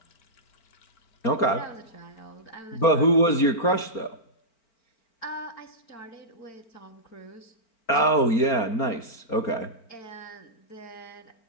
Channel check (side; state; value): right; late; 4.3 ms